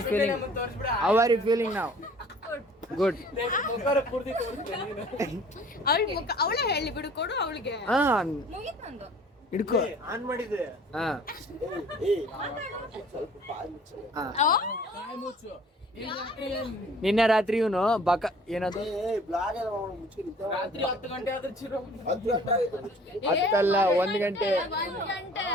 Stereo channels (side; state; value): both; normal; correlation 0.51